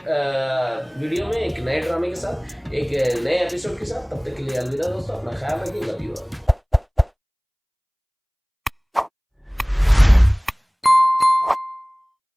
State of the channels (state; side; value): identical; both; correlation 1.00